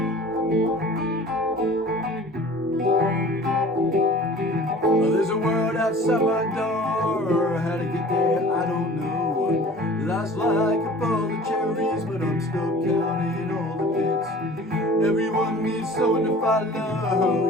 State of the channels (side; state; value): both; normal; correlation 0.44